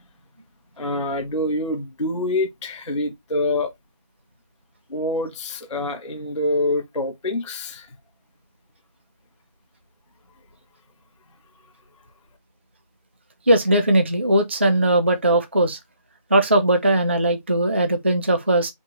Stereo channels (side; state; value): both; inverted; correlation -0.60